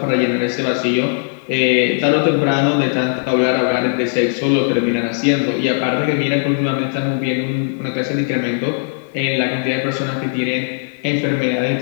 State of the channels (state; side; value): silent; right; digital silence